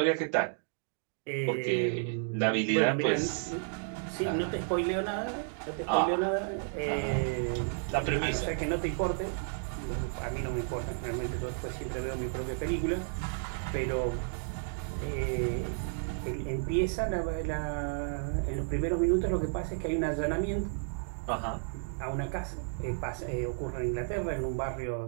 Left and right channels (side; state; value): left; silent; digital silence